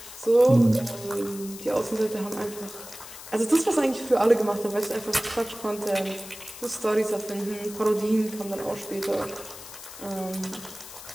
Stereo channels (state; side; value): noise; left; hiss, 14 dB below the sound